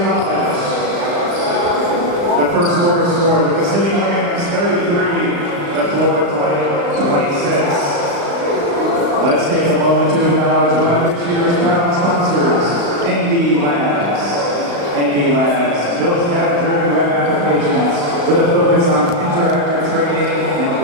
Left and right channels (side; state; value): left; late; 35 ms